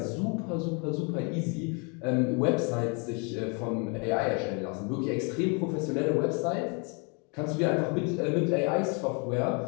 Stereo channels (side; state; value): right; quieter; 34.3 dB